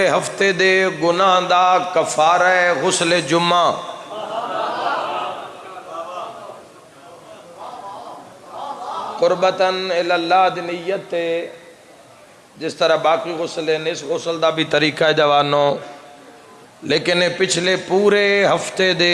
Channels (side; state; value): both; identical; correlation 1.00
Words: ہفتے دے گناہ دا کفارہ غسل جمعہ قربتاً اللہ دی نیت تے جس طرح باقی غسل ہیں اس غسل دا بھی طریقہ ہے جوانوں لیکن پچھلے پورے ہفتے